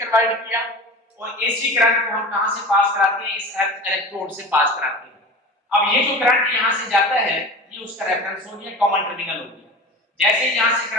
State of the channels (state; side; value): normal; both; correlation 0.33